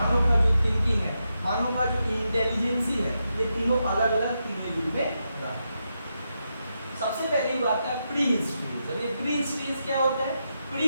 का जो थिंकिंग है, मानव का जो इंटेलिजेंसी है, ये तीनों अलग अलग तीनों युग में रहा। सबसे पहली बात है प्री हिस्ट्री। जब ये प्री हिस्ट्री क्या होता है?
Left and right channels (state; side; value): inverted; both; correlation -0.85